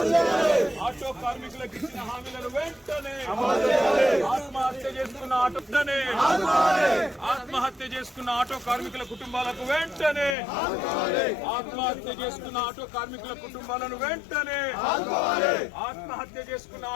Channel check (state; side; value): drops out; right; at 10.4 s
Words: ఆటో కార్మికులకు ఇచ్చిన హామీలను వెంటనే ఆత్మహత్య చేసుకున్న ఆత్మహత్య చేసుకున్న ఆటో కార్మికుల కుటుంబాలకు వెంటనే ఆత్మహత్య చేసుకున్న ఆటో కార్మికుల కుటుంబాలను వెంటనే ఆత్మహత్య చేసుకున్న